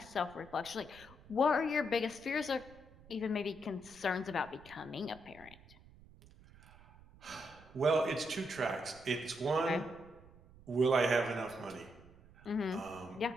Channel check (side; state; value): right; noise; rumble, 22 dB below the sound